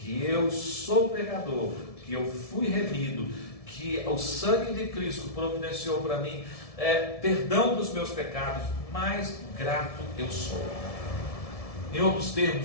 eu sou pecador, que eu fui remido, que o sangue de Cristo providenciou para mim perdão dos meus pecados, mais grato eu sou. Em outros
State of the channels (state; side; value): late; right; 1.7 ms